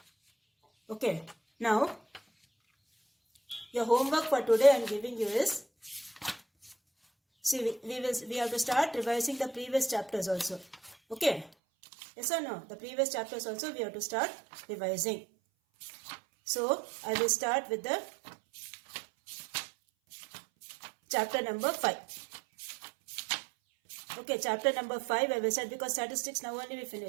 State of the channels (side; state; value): left; drops out; at 11.5 s